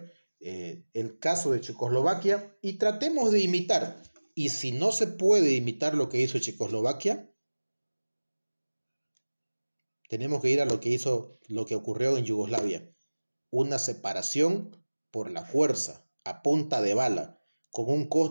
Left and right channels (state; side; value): inverted; both; correlation -1.00